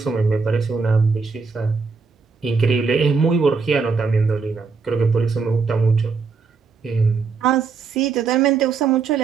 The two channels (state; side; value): quieter; left; 5.0 dB